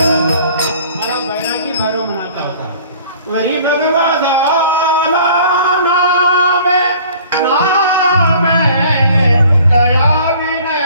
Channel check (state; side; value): inverted; both; correlation -0.50